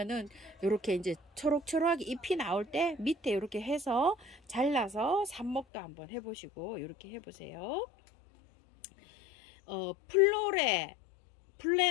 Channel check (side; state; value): right; drops out; at 5.7 s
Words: 이렇게 이제 초록초록하게 잎이 나올 때 밑에 이렇게 해서 잘라서 삽목도 한번 해보시고 이렇게 해보세요.